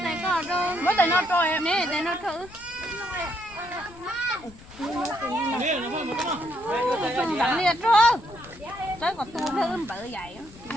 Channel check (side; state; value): left; noise; rumble, 22 dB below the sound